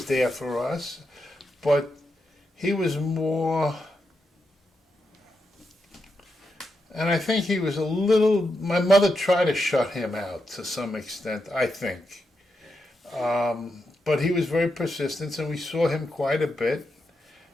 there for us, but he was more, and I think he was a little, my mother tried to shut him out to some extent, I think. But he was very persistent, and we saw him quite a bit.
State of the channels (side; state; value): both; normal; correlation 0.85